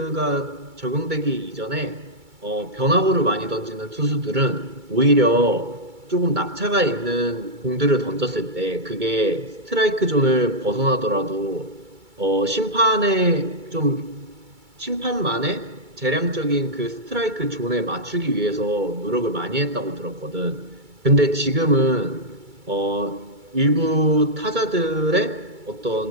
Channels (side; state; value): left; late; 2.3 ms